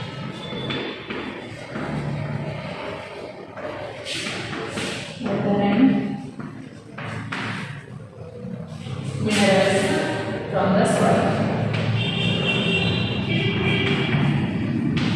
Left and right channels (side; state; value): both; identical; correlation 1.00